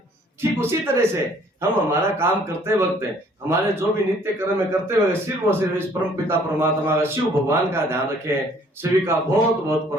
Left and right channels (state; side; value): normal; both; correlation 0.59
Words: ठीक उसी तरह से हम हमारा काम करते वक्त, हमारे जो भी नित्य कर्म में करते हुए सिर्फ और सिर्फ इस परम पिता परमात्मा का, शिव भगवान का ध्यान रखें। सभी का बहुत बहुत